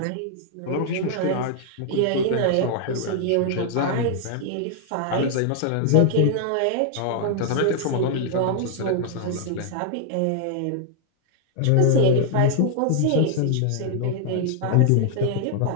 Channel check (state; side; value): different; both; correlation 0.00